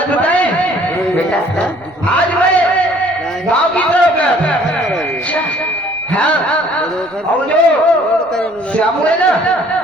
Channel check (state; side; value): noise; right; rumble, 29 dB below the sound